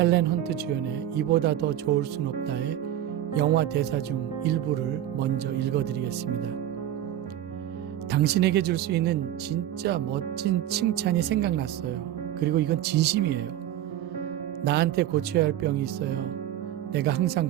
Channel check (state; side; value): quieter; left; 12.0 dB